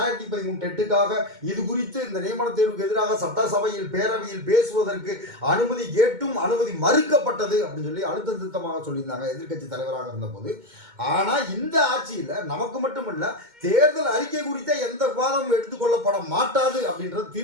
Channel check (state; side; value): late; left; 2.2 ms